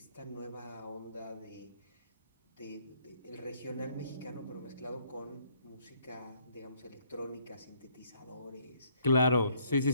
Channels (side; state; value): both; inverted; correlation -0.65